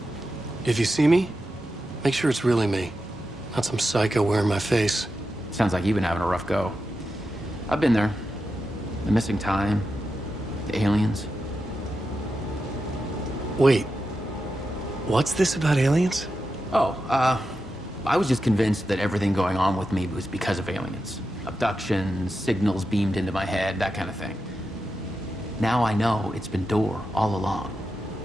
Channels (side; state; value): both; normal; correlation 0.89